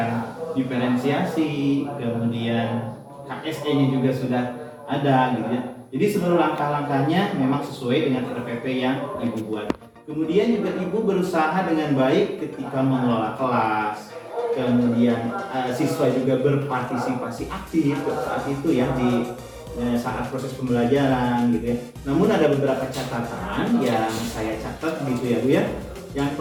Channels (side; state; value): both; identical; correlation 1.00